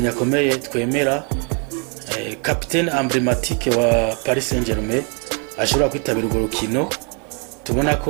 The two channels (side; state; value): left; quieter; 36.8 dB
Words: akomeye twemera, capitaine emblématique wa Paris Saint-Germain, ashobora kwitabira urwo rukino. Tubona